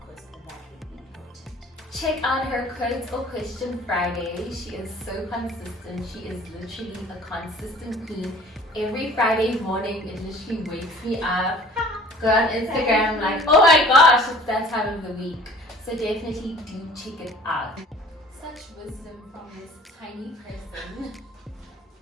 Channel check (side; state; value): both; normal; correlation 0.48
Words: because that will be important. Check out her Quotes or Question Friday. She is so consistent. She is literally a consistent queen. Every Friday morning, it literally wakes me up. Go on Instagram, like, oh my gosh, it's that time of the week. So definitely do check it out. Such wisdom from this tiny person.